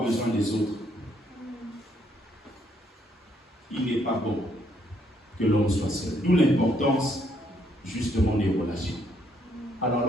besoin des autres. Il n'est pas bon que l'homme soit seul. D'où l'importance justement des relations. Alors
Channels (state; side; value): normal; both; correlation 0.71